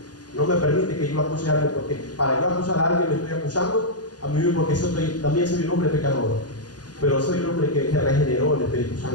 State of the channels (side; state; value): right; late; 0.69 ms